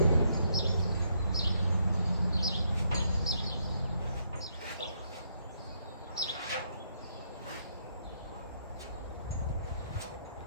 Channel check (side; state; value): both; inverted; correlation -0.74